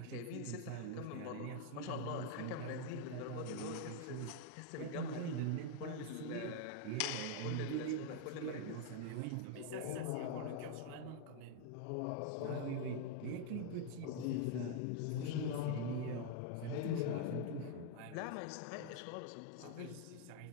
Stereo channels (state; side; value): different; both; correlation 0.00